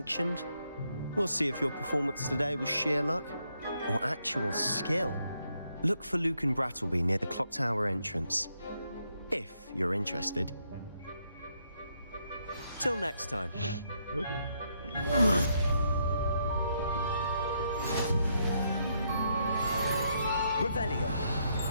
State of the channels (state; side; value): inverted; both; correlation -0.76